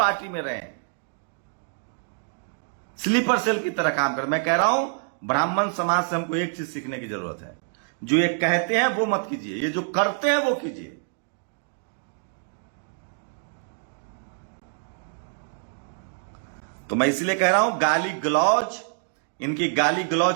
में रहे, स्लीपर सेल की तरह काम कर। मैं कह रहा हूं, ब्राह्मण समाज से हमको एक चीज सीखने की जरूरत है। जो ये कहते हैं वो मत कीजिए, ये जो करते हैं वो कीजिए। तो मैं इसलिए कह रहा हूं, गाली गलौज, इनकी गाली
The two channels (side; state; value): left; silent; digital silence